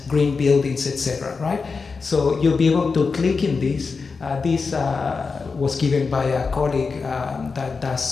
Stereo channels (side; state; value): right; quieter; 4.7 dB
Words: green buildings, etc., right? So you'll be able to click in this. This was given by a colleague that